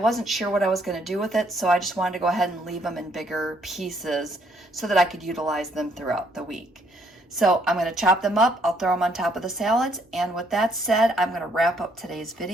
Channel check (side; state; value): both; normal; correlation 0.68